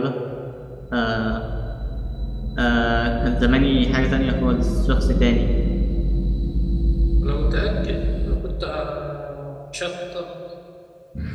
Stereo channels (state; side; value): identical; both; correlation 1.00